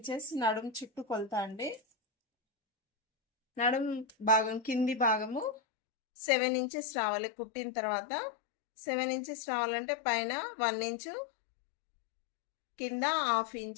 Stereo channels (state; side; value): drops out; right; at 5.6 s